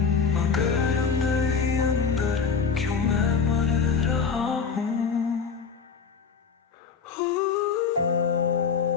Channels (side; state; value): right; quieter; 5.7 dB